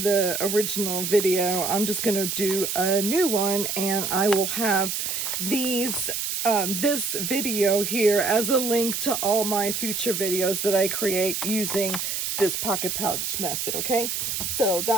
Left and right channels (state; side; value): noise; right; hiss, 2 dB below the sound